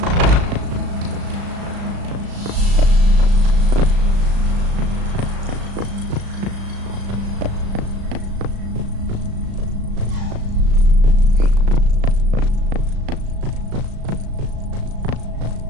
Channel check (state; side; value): late; left; 36 ms